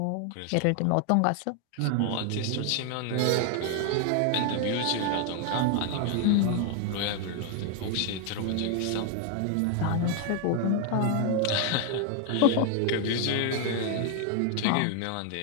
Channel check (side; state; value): both; different; correlation 0.00